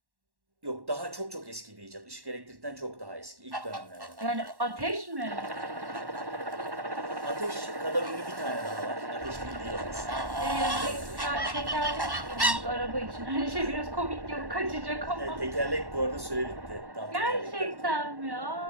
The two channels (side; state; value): left; late; 1.1 ms